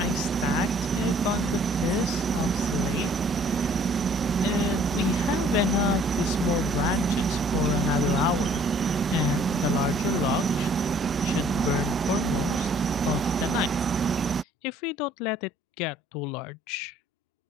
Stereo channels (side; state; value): both; normal; correlation 0.58